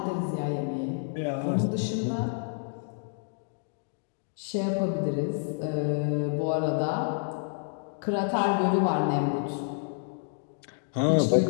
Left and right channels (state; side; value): silent; right; digital silence